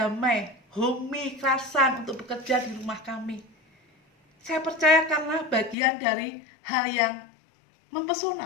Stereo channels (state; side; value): drops out; right; at 5.8 s